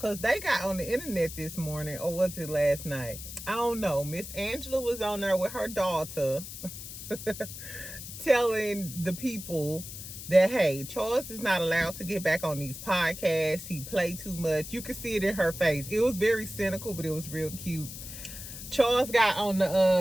they got on the internet this morning, or was it last night? I don't know. Miss Angela was on there with her daughter telling the people that, hey, Charles is not allowed to get back on these podcasts. He played too much. You could see it in her face. It was very cynical, but it was real cute. Charles got on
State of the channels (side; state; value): left; noise; hiss, 11 dB below the sound